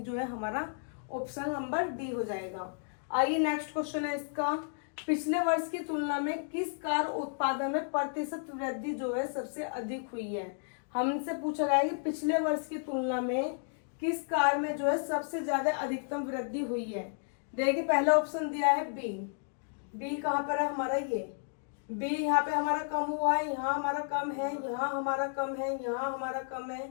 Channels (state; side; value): silent; right; digital silence